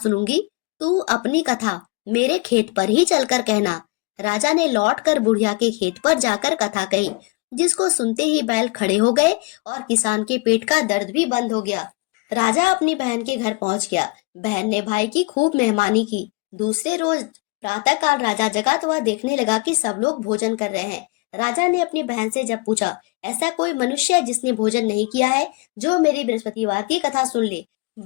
तू अपनी कथा मेरे खेत पर ही चलकर कहना। राजा ने लौटकर बुढ़िया के खेत पर जाकर कथा कही। जिसको सुनते ही बैल खड़े हो गए और किसान के पेट का दर्द भी बंद हो गया। राजा अपनी बहन के घर पहुंच गया। बहन ने भाई की खूब मेहमानी की। दूसरे रोज प्रातःकाल राजा जगा तो वह देखने लगा कि सब लोग भोजन कर रहे हैं। राजा ने अपनी बहन से जब पूछा, ऐसा कोई मनुष्य है जिसने भोजन नहीं किया है, जो मेरी बृहस्पतिवार की कथा सुन ले?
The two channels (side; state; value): right; quieter; 27.5 dB